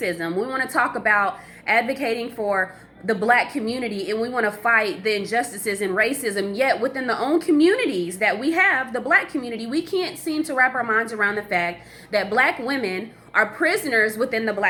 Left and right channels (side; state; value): both; identical; correlation 1.00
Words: We want to talk about advocating for the black community, and we want to fight the injustices and racism. Yet within the own communities that we have, the black community, we can't seem to wrap our minds around the fact that black women are prisoners within the